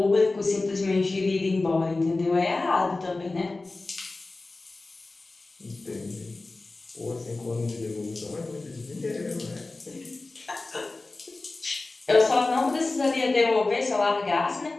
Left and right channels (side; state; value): right; quieter; 3.3 dB